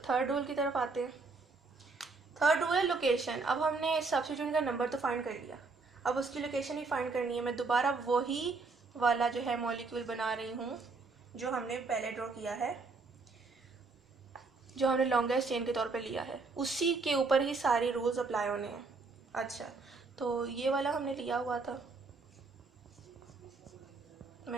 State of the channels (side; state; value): left; quieter; 4.0 dB